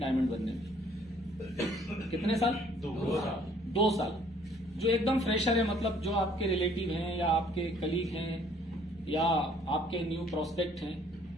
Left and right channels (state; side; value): normal; both; correlation 0.60